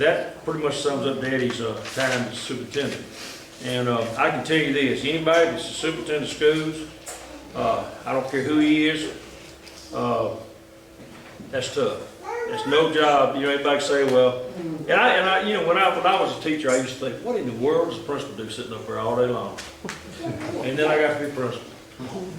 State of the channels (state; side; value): identical; both; correlation 1.00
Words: pretty much sums up Daddy's time as superintendent. And I can tell you this, anybody that's a superintendent of schools, I don't care who he is, that's tough. It's no job. You know, everybody say, well, and I, you know, when I was a teacher, I used to think, what in the world does the principal do sitting up there all day long? And then I got to be principal,